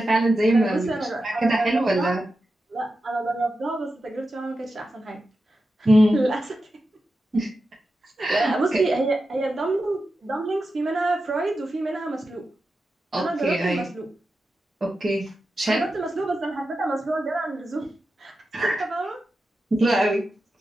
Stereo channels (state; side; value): normal; both; correlation 0.90